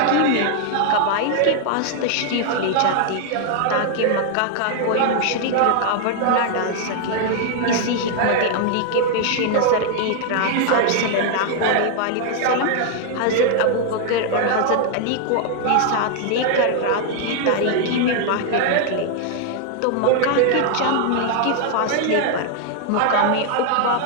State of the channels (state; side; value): different; both; correlation 0.00